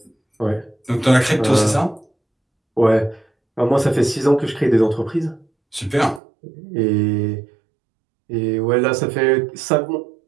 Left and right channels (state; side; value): drops out; left; at 6.2 s